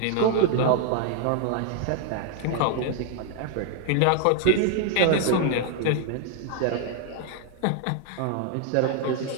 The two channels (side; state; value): both; different; correlation 0.00